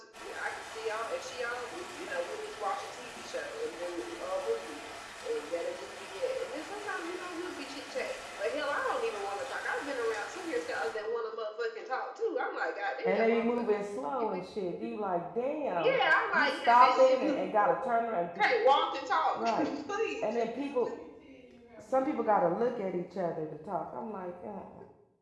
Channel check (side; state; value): both; identical; correlation 1.00